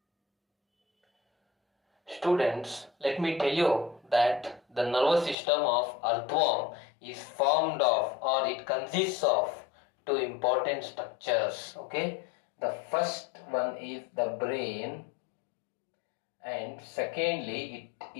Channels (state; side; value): drops out; right; at 5.4 s